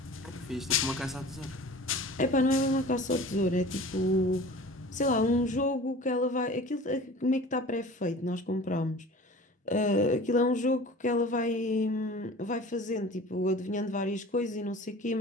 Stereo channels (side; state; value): both; normal; correlation 0.41